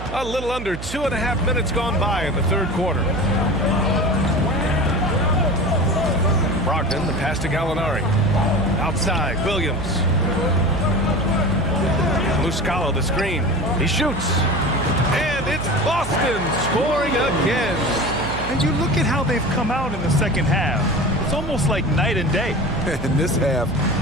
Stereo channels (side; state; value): right; noise; hum, 9 dB below the sound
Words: A little under 2.5 minutes gone by in the third quarter. Brogdon, the pass to Gallinari. Outside, Williams. Muscala, the screen. He shoots. And it's Boston scoring again. And you look at how they've come out in the second half. It's almost like night and day. In this half,